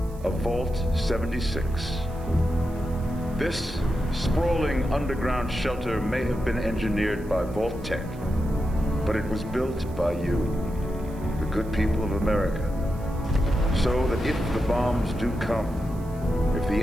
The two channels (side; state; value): right; noise; hiss, 25 dB below the sound